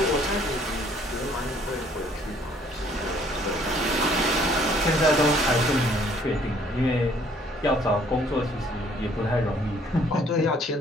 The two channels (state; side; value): normal; both; correlation 0.61